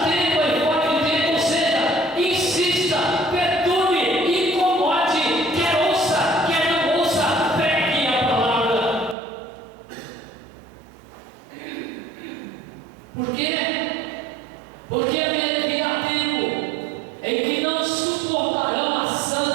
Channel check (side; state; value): left; drops out; at 9.2 s